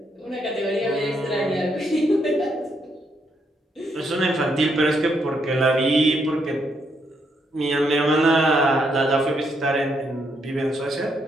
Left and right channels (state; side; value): normal; both; correlation 0.76